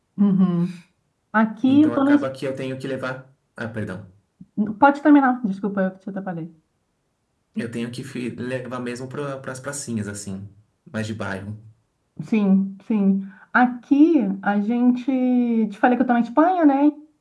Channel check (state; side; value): identical; both; correlation 1.00